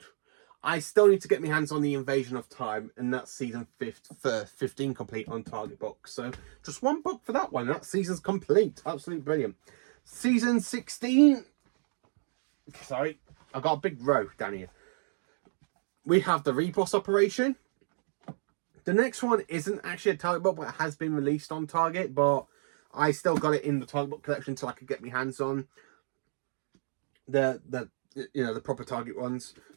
I still need to get my hands on the Invasion of Time, and that's season 15 complete on Target Book. So, just 1 book for that one. That season's complete. Absolutely brilliant. Season 16. Sorry, I've got a big row down here. We have the Repos Operation. The next one isn't actually a Target book, but it has been released on Target. But I still got it in the Target book collection until I could get my hands on the proper Target ones.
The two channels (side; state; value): left; silent; digital silence